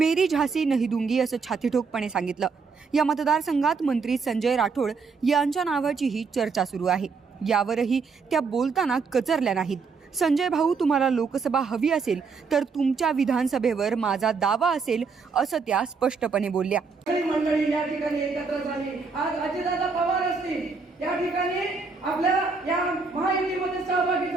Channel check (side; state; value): left; quieter; 4.9 dB